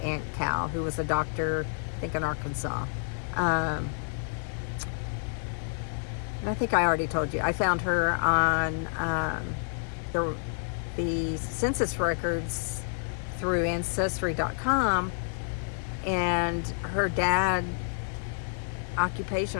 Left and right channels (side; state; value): right; silent; 58 dB below the other